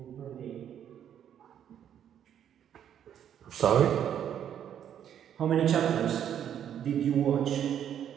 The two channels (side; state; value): left; quieter; 9.6 dB